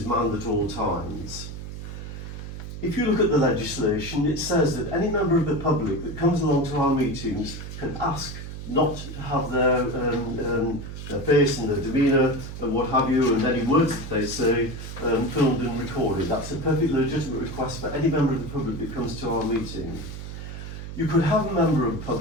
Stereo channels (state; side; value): noise; right; hum, 9 dB below the sound